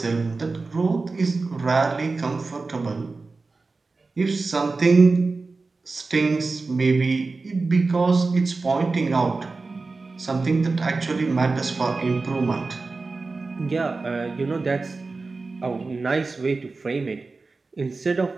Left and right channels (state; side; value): quieter; left; 3.8 dB